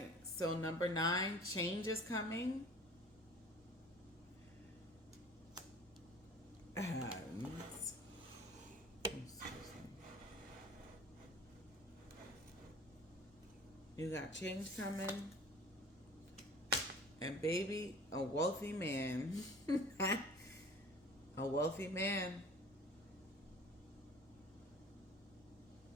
so number 9, change is coming. You got change coming. And baby, a wealthy man. A wealthy man.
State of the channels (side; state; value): both; normal; correlation 0.45